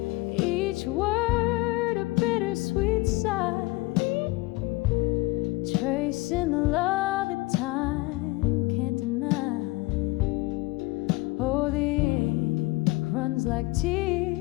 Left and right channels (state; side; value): quieter; right; 22.2 dB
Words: each word a bittersweet sigh, tracing the love that time can't deny. Oh, the ink runs like